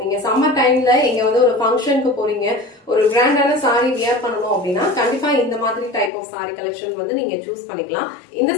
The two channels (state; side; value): drops out; right; at 6.1 s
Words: நீங்க சம்மர் டைம்ல எங்க வந்து ஒரு ஃபங்க்ஷனுக்கு போறீங்க, ஒரு கிராண்டான சாரி வியர் பண்ணணும் அப்படின்னா கண்டிப்பா இந்த மாதிரி டைப் ஆஃப் சாரி கலெக்ஷன் வந்து நீங்க சூஸ் பண்ணிக்கலாம். இந்த